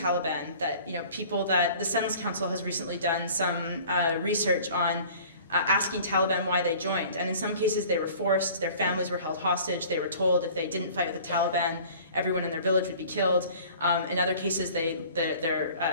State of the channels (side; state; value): both; inverted; correlation -0.47